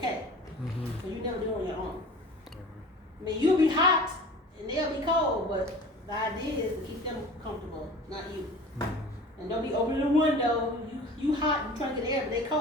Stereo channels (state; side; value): normal; both; correlation 0.41